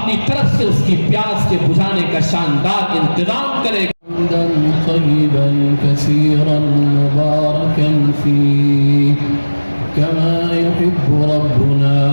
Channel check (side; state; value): both; inverted; correlation -1.00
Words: طرف سے اس کی پیاس کے بجھانے کا شاندار انتظام کرے گا۔ حمدا طیبا کثیرا مبارکا فیہ کما یحب ربنا